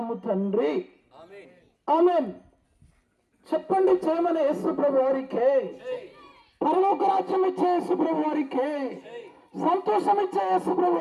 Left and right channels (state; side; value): identical; both; correlation 1.00